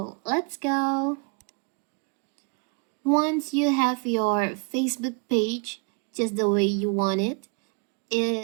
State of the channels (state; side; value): quieter; left; 33.3 dB